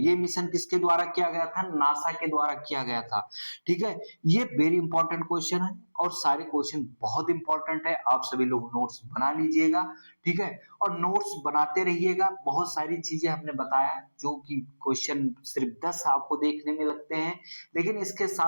मिशन किसके द्वारा किया गया था? नासा के द्वारा किया गया था, ठीक है। ये वेरी इंपॉर्टेंट क्वेश्चन है और सारे क्वेश्चन बहुत इंपॉर्टेंट है, आप सभी लोग नोट्स बना लीजिएगा, ठीक है, और नोट्स बनाते रहिएगा। बहुत सारी चीजें हमने बताया जो कि क्वेश्चन सिर्फ 10 आपको देखने में लगते हैं, लेकिन इसके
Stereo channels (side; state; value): both; inverted; correlation -1.00